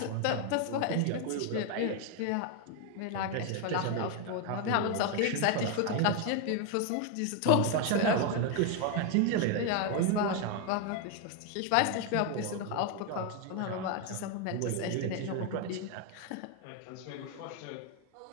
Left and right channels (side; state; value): both; different; correlation 0.01